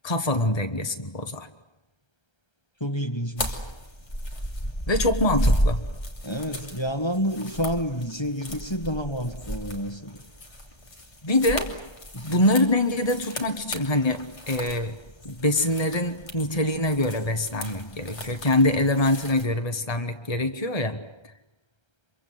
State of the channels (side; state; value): right; late; 1.3 ms